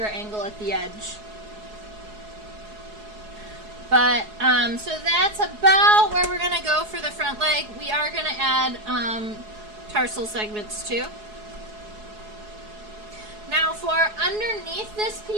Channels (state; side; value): late; left; 4.7 ms